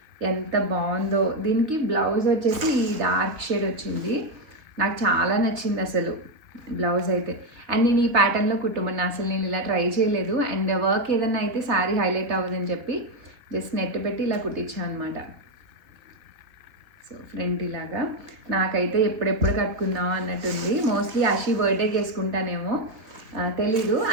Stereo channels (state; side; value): late; left; 3.4 ms